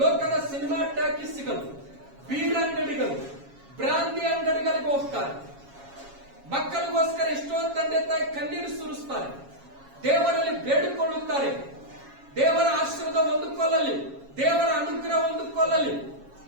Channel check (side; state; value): left; late; 7.3 ms